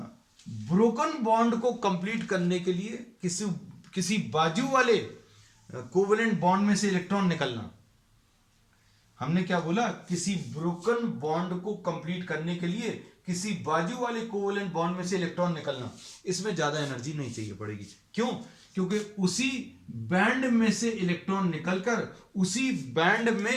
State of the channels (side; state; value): both; identical; correlation 1.00